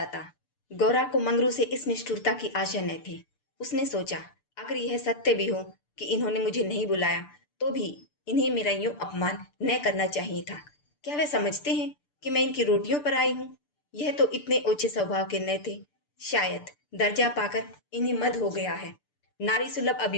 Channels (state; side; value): late; right; 6.8 ms